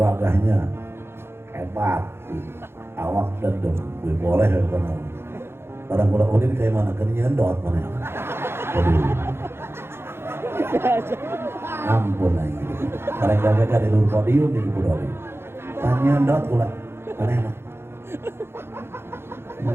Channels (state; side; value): late; left; 0.12 ms